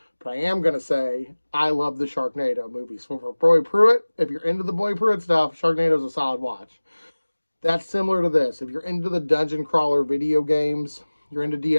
But I am going to say I love the Sharknado movies. So for Boy Pruitt, if you're into the Boy Pruitt stuff, Sharknado is a solid watch. That's similar to this. If you're into the dungeon crawler video games, you're into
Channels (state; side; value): inverted; both; correlation -1.00